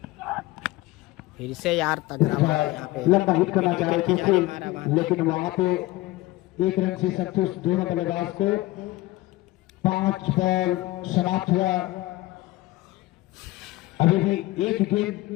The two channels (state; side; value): quieter; right; 18.7 dB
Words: फिर से यार तगड़ा यहाँ पे लंबा हिट करना चाह रहे थे, लेकिन वहां पे एक रन से संतुष्ट दोनों बल्लेबाज को। 5 बॉल समाप्त हुआ, अभी भी एक गेंद